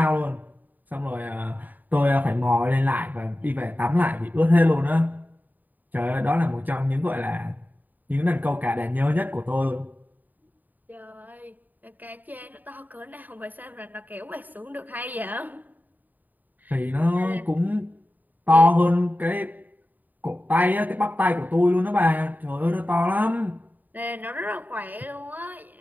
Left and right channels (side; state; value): left; late; 0.085 ms